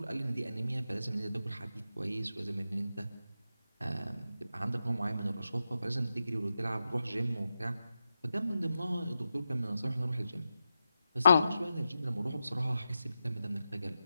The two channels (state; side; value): inverted; both; correlation -0.89